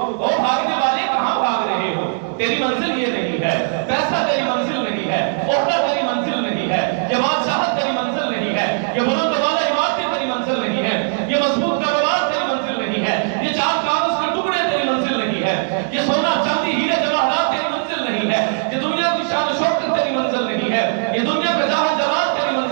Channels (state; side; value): silent; left; digital silence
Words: او بھاگنے والے کہاں بھاگ رہے ہو؟ تیری منزل یہ نہیں ہے، پیسہ تیری منزل نہیں ہے، عہدہ تیری منزل نہیں ہے، یہ بادشاہت تیری منزل نہیں ہے، یہ بلند والا عمارتیں تیری منزل نہیں ہے، یہ مضبوط کاروبار تیری منزل نہیں ہے، یہ چار کاغذ کے ٹکڑے تیری منزل نہیں ہے، یہ سونا چاندی ہیرے جواہرات تیری منزل نہیں ہے، یہ دنیا کی شان و شوکت تیری منزل نہیں ہے، یہ دنیا کا جاہ جلال تیری